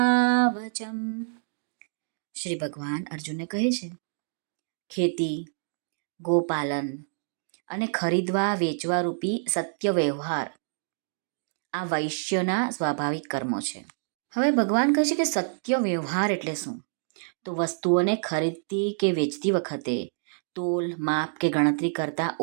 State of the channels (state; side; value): silent; left; digital silence